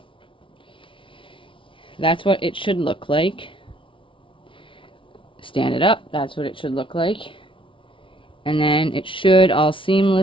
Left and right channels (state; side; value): late; right; 0.25 ms